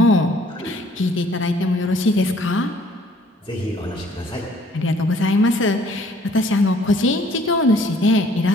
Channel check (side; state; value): both; normal; correlation 0.59